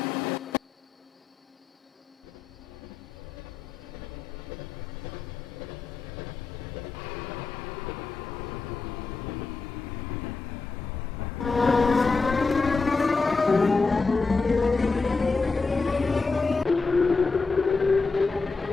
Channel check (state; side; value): quieter; right; 4.3 dB